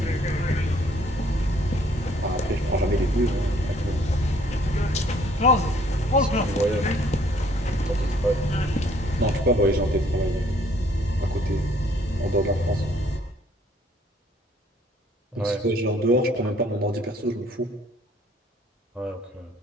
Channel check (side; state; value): both; normal; correlation 0.62